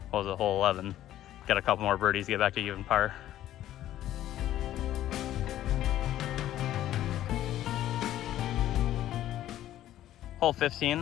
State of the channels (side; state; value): right; quieter; 12.9 dB